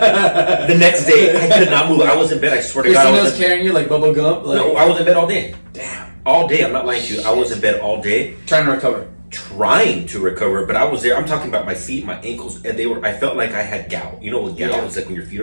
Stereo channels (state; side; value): inverted; both; correlation -1.00